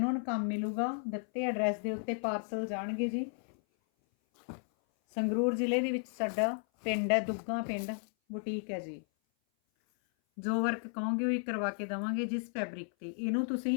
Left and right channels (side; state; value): right; silent; 55 dB below the other